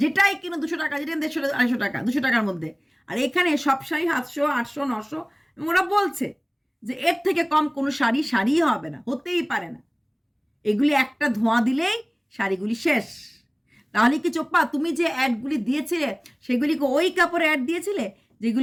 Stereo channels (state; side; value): identical; both; correlation 1.00